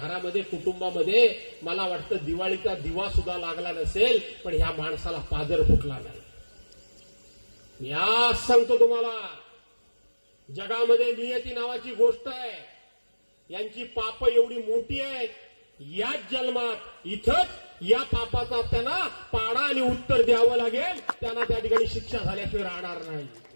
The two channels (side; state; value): both; inverted; correlation -1.00